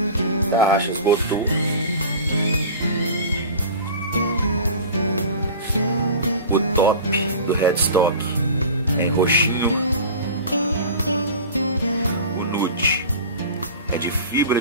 Tarraxas Botou. O top do headstock é em roxinho. O nude é de fibra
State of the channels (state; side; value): inverted; both; correlation -0.36